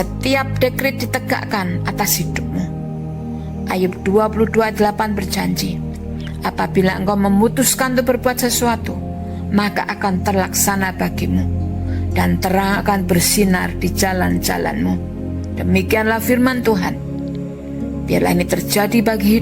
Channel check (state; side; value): identical; both; correlation 1.00